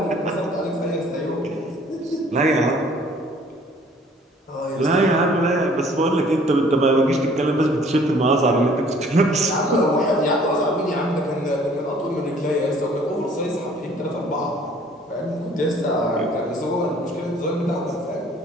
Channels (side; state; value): both; normal; correlation 0.56